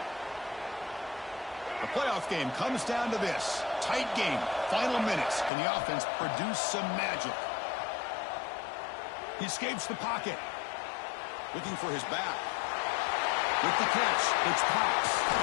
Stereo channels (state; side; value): drops out; right; at 5.5 s